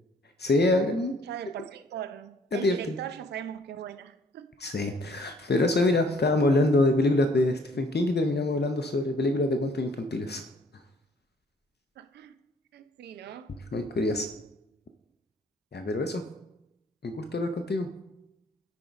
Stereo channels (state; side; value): normal; both; correlation 0.61